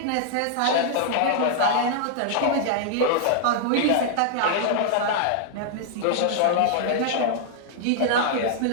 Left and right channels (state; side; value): different; both; correlation -0.01